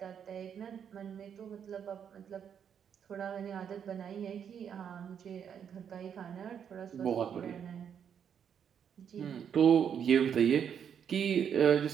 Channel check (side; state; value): left; quieter; 8.1 dB